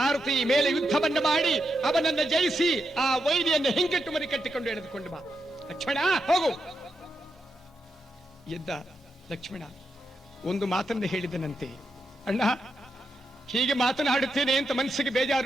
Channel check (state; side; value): normal; both; correlation 0.84